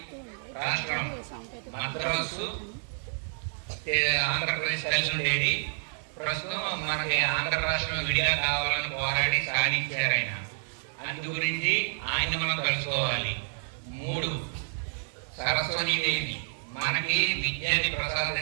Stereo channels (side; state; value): left; silent; digital silence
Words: రాష్ట్రం మద్రాసు ఆంధ్రప్రదేశ్ కలిసి ఉండేది. ప్రస్తుతం మనకి ఆంధ్ర రాష్ట్రం విడిగా కావాలని పోరాడి సాధించారు ఆయన. అందు గురించి ఆయన మనం కలుసుకోవాలి. 3 సరస్వతీదేవి మనకి విద్యాన్ని